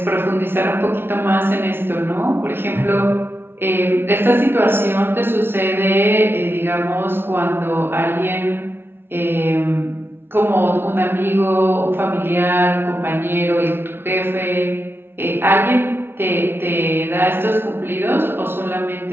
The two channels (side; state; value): left; late; 0.11 ms